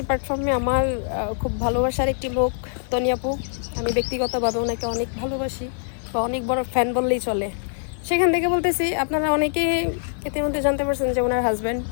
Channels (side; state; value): right; silent; digital silence